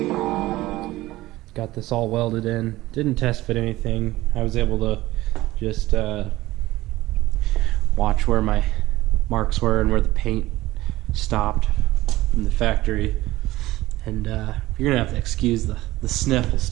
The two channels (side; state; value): left; quieter; 17.4 dB